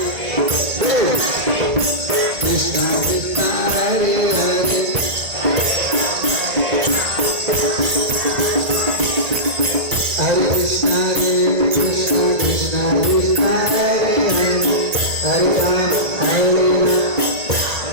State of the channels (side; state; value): left; late; 1.8 ms